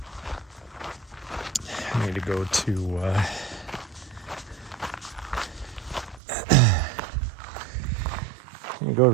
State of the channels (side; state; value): left; drops out; at 6.2 s